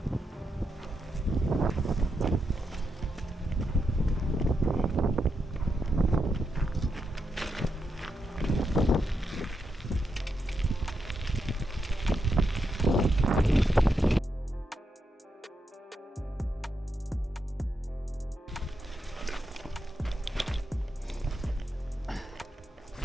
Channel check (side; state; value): both; normal; correlation 0.84